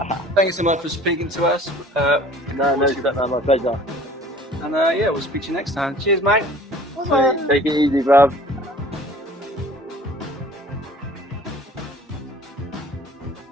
Thank you so much for speaking to us. No, my pleasure. And we'll speak to you next time. Cheers, mate. Take it easy, bruv.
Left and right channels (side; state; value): both; normal; correlation 0.49